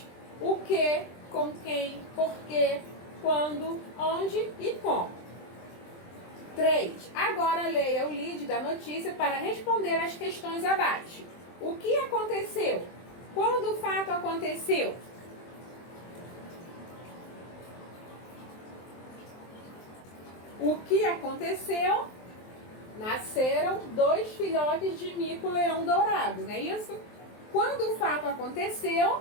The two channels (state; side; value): late; right; 23 ms